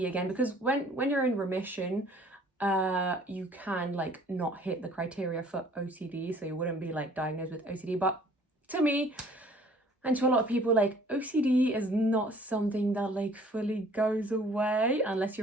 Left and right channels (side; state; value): both; normal; correlation 0.55